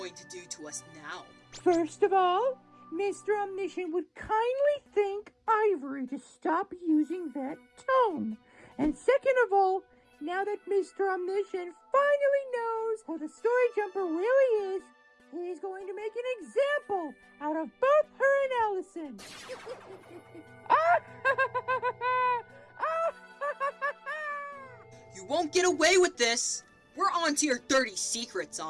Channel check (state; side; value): identical; both; correlation 1.00